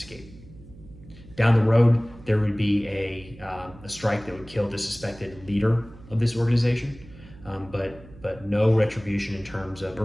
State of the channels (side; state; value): right; noise; hum, 20 dB below the sound